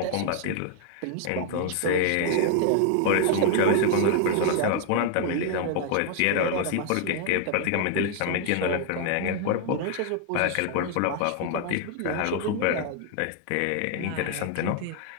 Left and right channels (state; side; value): different; both; correlation 0.00